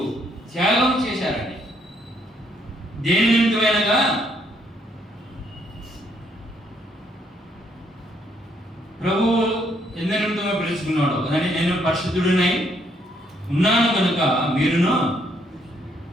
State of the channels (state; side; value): normal; both; correlation 0.71